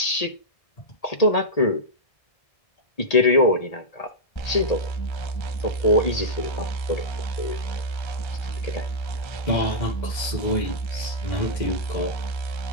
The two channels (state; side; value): late; right; 1.8 ms